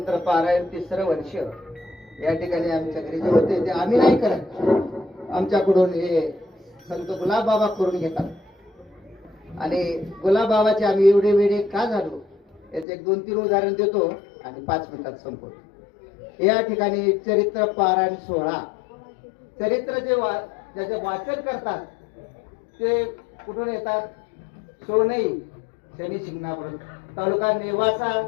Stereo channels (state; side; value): drops out; right; at 12.9 s